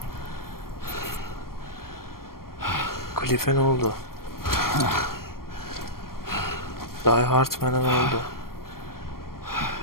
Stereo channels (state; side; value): late; right; 0.93 ms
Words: Cliff'e ne oldu? Die Hardman'a ne oldu?